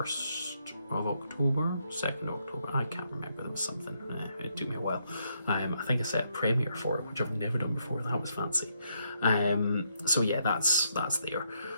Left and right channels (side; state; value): both; inverted; correlation -0.76